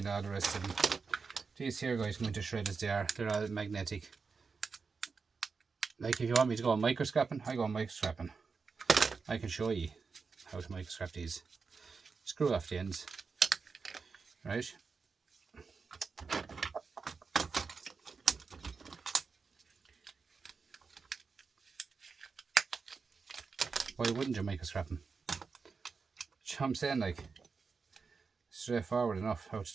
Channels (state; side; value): quieter; left; 4.9 dB